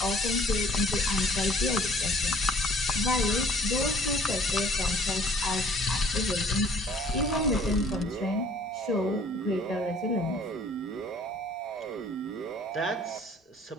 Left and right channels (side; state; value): both; normal; correlation 0.54